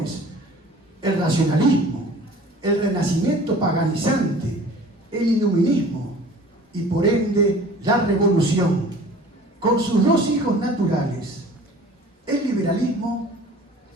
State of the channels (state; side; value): normal; both; correlation 0.46